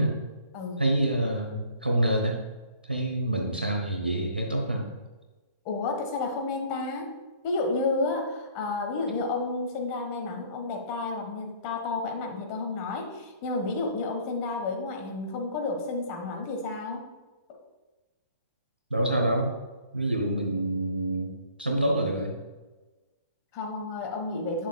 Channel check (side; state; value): both; inverted; correlation -0.55